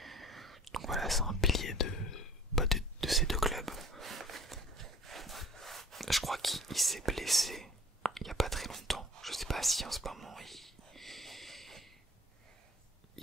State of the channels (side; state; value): both; normal; correlation 0.48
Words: Donc voilà, c'est un pilier de ces deux clubs. Je crois qu'il s'est blessé il n'y a pas très longtemps. Je sais pas si en ce moment